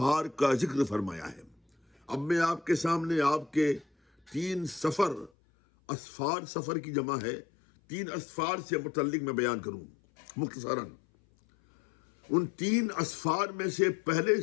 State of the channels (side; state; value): right; drops out; at 5.3 s